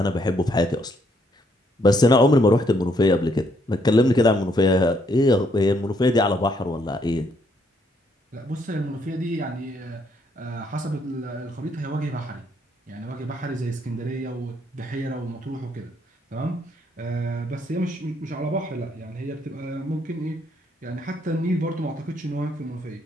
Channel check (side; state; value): both; normal; correlation 0.71